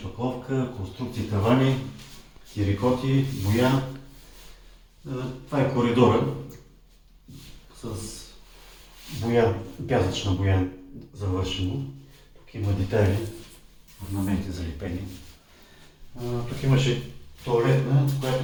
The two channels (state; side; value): identical; both; correlation 1.00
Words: конструкции, тавани, терикоти, боя. Това е коридора с боя, пясъчна боя завършено. Тук има детайли, орнаменти залепени. Тук имаше тоалетна, която